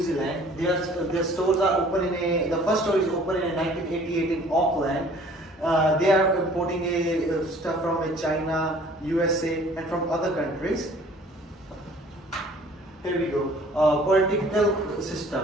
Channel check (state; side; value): normal; both; correlation 0.53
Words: Zealand. Their stores are open the first store is open in 1988 in Auckland. They are importing stuff from China, USA and from other countries. Here we go. Political